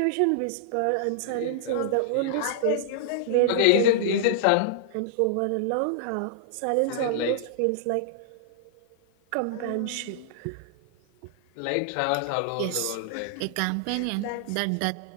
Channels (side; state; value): both; different; correlation -0.01